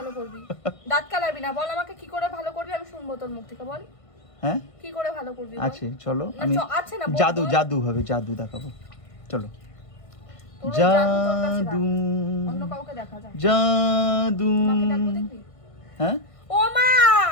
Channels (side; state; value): right; late; 1.5 ms